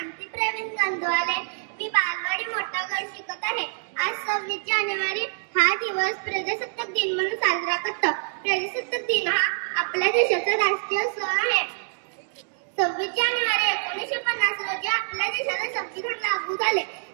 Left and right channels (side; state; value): left; silent; digital silence